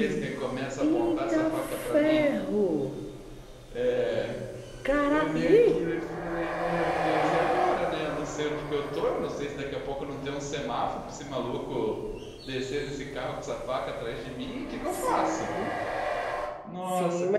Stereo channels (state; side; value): identical; both; correlation 1.00